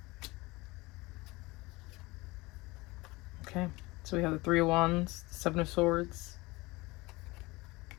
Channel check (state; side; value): quieter; right; 22.4 dB